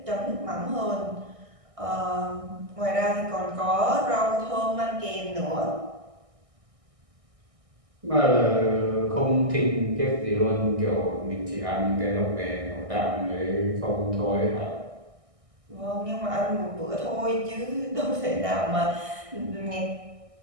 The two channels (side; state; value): left; late; 1.6 ms